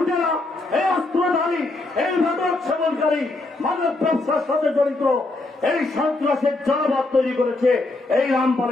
এই অস্ত্রধারী, এই মাদক সেবনকারী, মাদক ব্যবসার সাথে জড়িত এই সন্ত্রাসের জনপদ তৈরি করেছে এই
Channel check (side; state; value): right; quieter; 3.0 dB